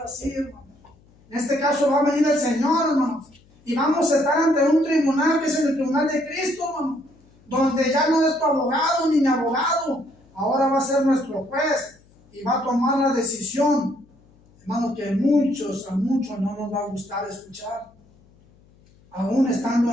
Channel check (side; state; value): left; noise; hum, 30 dB below the sound